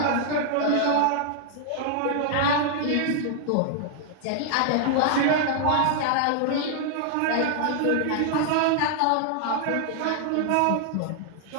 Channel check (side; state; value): both; different; correlation 0.00